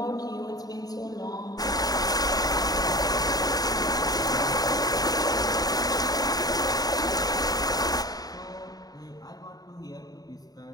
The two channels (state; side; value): late; right; 0.18 ms